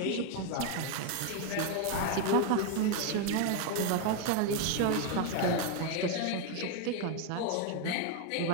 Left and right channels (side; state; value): both; different; correlation 0.01